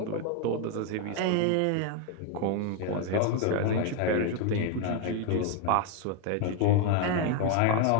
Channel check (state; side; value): different; both; correlation 0.01